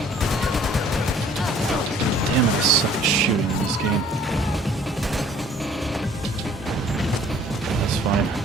Damn it, I suck at shooting in this game. That's fine.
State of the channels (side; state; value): both; normal; correlation 0.55